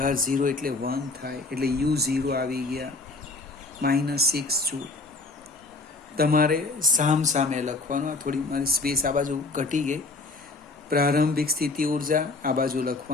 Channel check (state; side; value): quieter; right; 3.5 dB